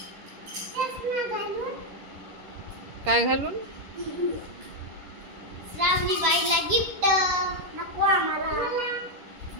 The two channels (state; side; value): late; left; 10 ms